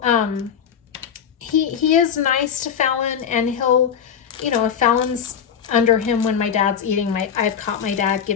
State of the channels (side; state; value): right; quieter; 7.9 dB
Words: he is nice to Fallon, and he'll, you know, if Fallon's under him when my dad's eating, I've caught my dad